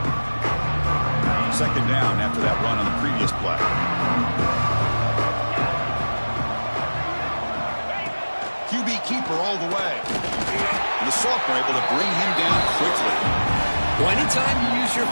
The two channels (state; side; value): inverted; both; correlation -1.00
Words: Second down after that run on the previous play. QB keeper all the way. And the sophomore able to bring him down quickly. Well, anytime you use your